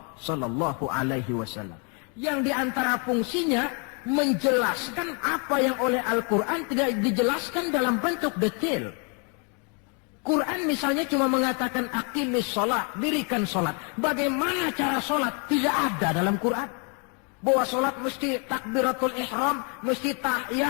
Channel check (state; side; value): quieter; right; 36.8 dB